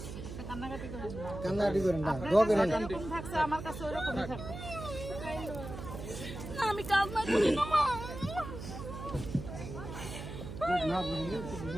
যেরকম থাকছে আমার কাছে ওইরকমই থাকবে। না আমি কান্না করি না মা।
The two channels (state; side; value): noise; right; hum, 9 dB below the sound